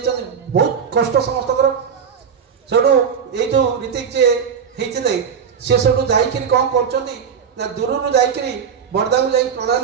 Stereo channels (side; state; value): left; quieter; 7.1 dB